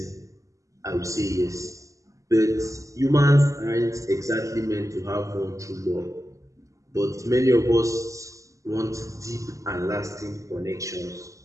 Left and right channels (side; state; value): left; late; 0.16 ms